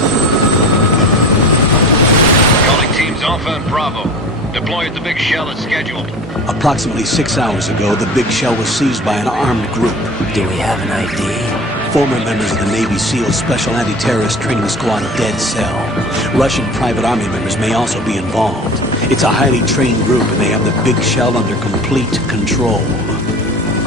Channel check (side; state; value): both; normal; correlation 0.37